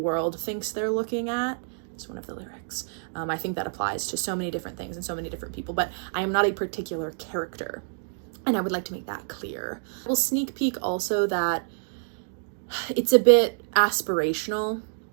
thinks they're looking at. It's one of the lyrics. I think that applies to so many different things and so many different people, but I am not a particular character. And I would like to make that clear. We'll sneak peek also that it's a bit aspirational.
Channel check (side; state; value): left; silent; digital silence